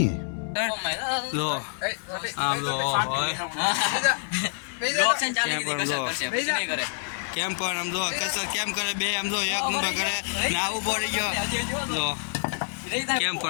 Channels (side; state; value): right; silent; digital silence